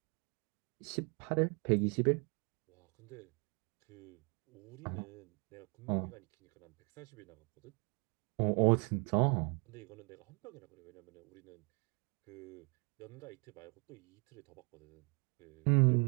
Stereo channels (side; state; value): left; quieter; 34.1 dB